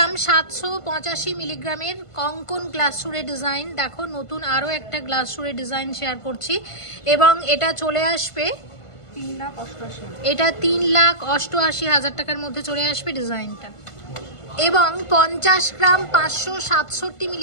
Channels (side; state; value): right; late; 1.5 ms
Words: 785 মিলিগ্রামের কঙ্কন গ্লাস সুরের ডিজাইন, দেখো নতুন আরও একটা গ্লাস সুরের ডিজাইন শেয়ার করছি এবং এটা চলে আসবে, এটা 3,88,000 টাকার মধ্যে চলে আসবে ডিজাইনটা। এবং 50 গ্রাম 567